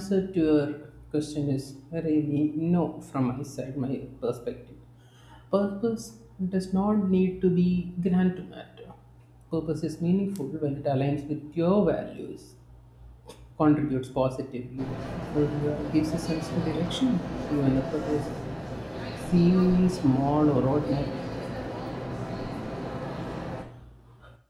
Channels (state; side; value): identical; both; correlation 1.00